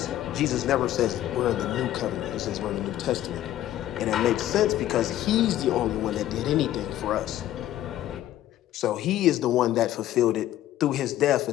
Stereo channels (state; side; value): quieter; right; 13.1 dB